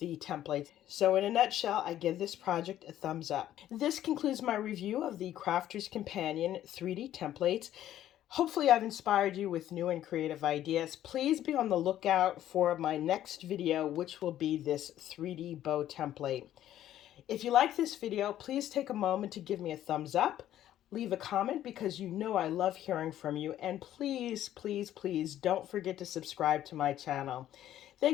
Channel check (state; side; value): quieter; right; 12.2 dB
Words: templates. So in a nutshell, I give this project a thumbs up. This concludes my review of the Crafter's Companion 3D templates. Hopefully I've inspired you with new and creative ideas. Please be on the lookout for my next video, which will be this 3D bow template. If you like this video, please take a moment to give me a thumbs up. Leave a comment because you know I love hearing from you. And please, please, please don't forget to subscribe to my channel.